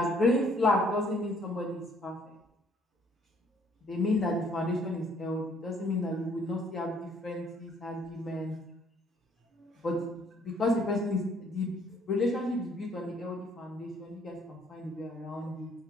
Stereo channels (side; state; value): both; normal; correlation 0.62